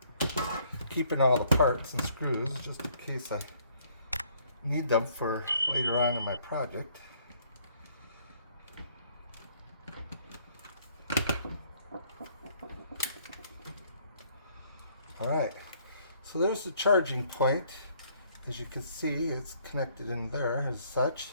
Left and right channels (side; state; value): both; inverted; correlation -0.64